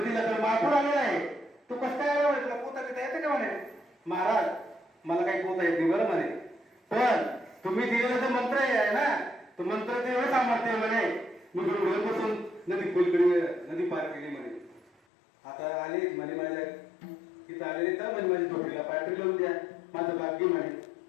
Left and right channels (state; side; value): drops out; right; at 14.9 s